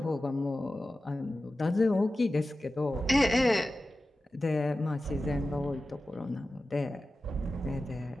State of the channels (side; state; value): both; normal; correlation 0.94